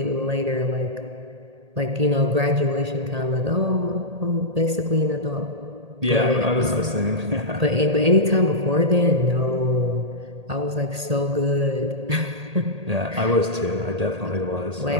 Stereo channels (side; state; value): left; late; 1.8 ms